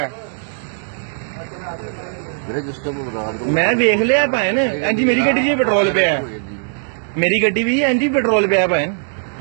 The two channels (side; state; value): left; silent; digital silence